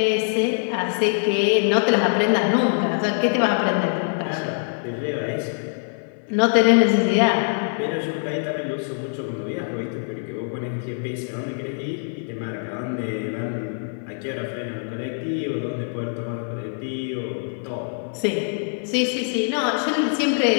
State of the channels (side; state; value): right; silent; 56 dB below the other